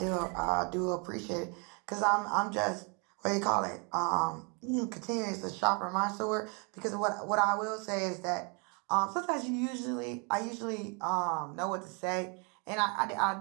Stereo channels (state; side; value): quieter; left; 34.3 dB